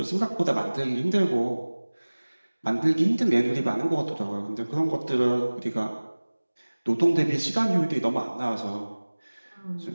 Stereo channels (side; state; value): both; inverted; correlation -1.00